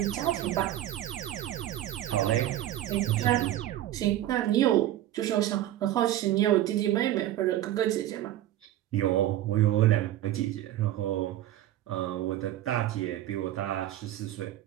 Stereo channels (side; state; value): left; quieter; 13.3 dB